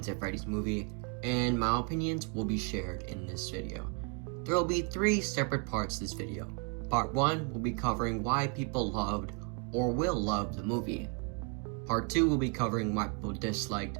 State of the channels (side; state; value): left; quieter; 35.6 dB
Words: at Freddy's movie, and my opinions will be shared in this video. There will be 3 separate parts to this video. Part 1 will be covering why people loved or will love the movie. Part 2 will be covering why people disliked